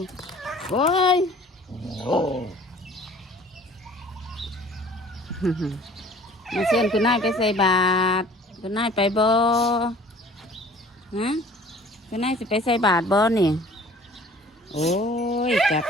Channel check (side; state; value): both; normal; correlation 0.50